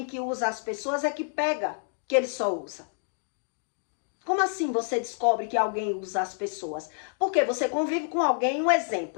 que usa as pessoas é que pega que ele só usa. Como assim você descobre que alguém usa as pessoas? Porque você convive com alguém, um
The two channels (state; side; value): silent; right; digital silence